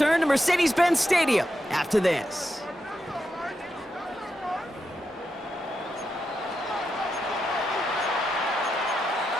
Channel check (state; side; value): normal; both; correlation 0.86